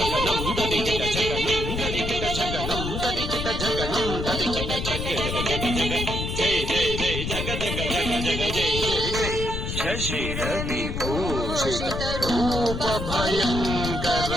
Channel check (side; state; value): left; noise; rumble, 4 dB below the sound